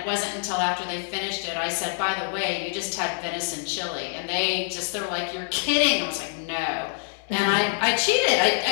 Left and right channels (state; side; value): silent; right; digital silence